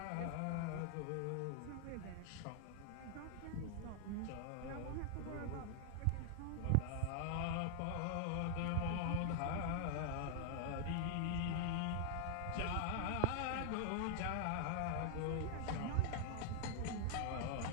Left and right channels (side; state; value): both; different; correlation 0.00